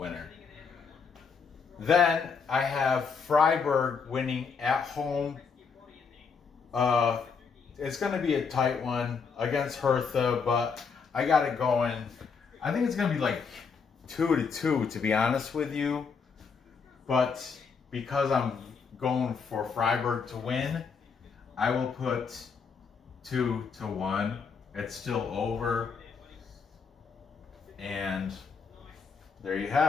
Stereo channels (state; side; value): quieter; right; 5.6 dB